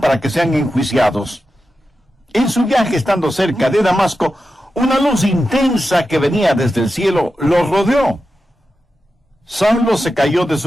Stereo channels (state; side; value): normal; both; correlation 0.90